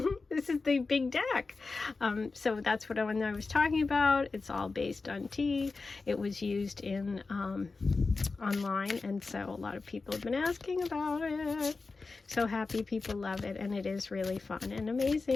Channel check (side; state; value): right; quieter; 4.0 dB